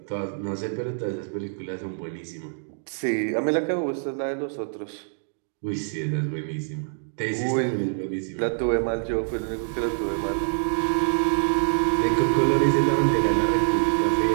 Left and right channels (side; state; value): left; silent; digital silence